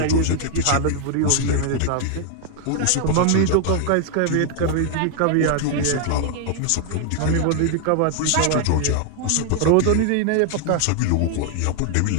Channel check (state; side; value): different; both; correlation 0.00